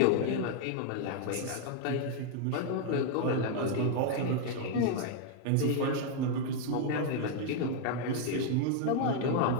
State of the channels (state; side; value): different; both; correlation 0.00